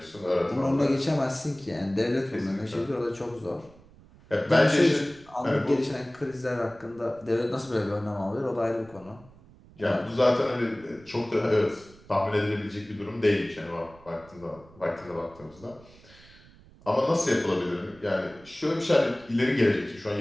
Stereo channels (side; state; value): right; noise; rumble, 24 dB below the sound